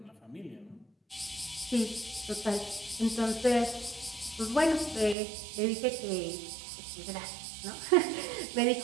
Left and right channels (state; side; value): drops out; left; at 5.2 s